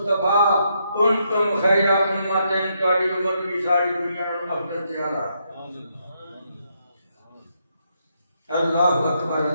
کنتم خیر امت، تہاڈی امت بھی ساری دنیا نال افضل تے اعلیٰ۔ اللہ اکبر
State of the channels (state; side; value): inverted; both; correlation -0.78